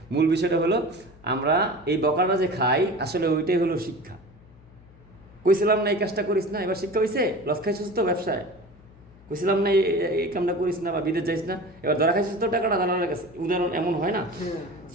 মূল বিষয়টা হলো আমরা এই বকাটা যে খাই আসলে ওইটাই হলো শিক্ষা। কইছিলাম না এই কাজটা করিস না, এবার শিক্ষা হইছে, লস খাইছিস তো ব্যবসায়, কইছিলাম না এই কামটা করিস না বা বিদেশ যাইস না, এবার ধরা খাইছিস তো টাকাটা দালালের কাছে, উদাহরণ এমন হয় না।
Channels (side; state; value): left; noise; hum, 24 dB below the sound